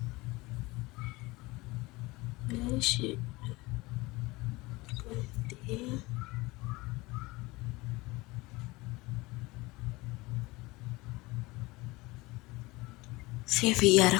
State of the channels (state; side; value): quieter; right; 22.1 dB